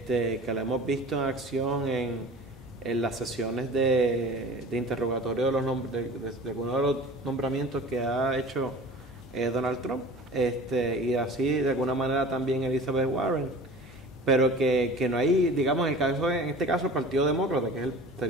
la hemos visto en acción en las sesiones de interrogatorio de algunos de los nombramientos que ha hecho Donald Trump, y así de alguna manera también Elizabeth Warren, pero que no hay, digamos, en este caso el Partido Demócrata, que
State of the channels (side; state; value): both; normal; correlation 0.40